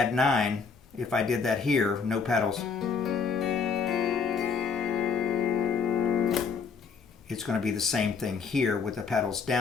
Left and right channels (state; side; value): quieter; right; 5.5 dB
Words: 9. If I did that here, no pedals, it's going to be the same thing here with the pedals